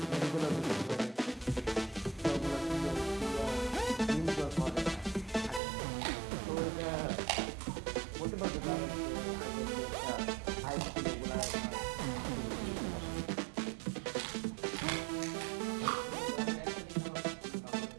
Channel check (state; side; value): drops out; left; at 5.6 s